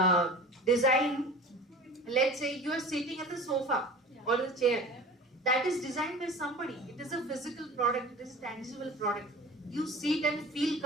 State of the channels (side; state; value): both; normal; correlation 0.38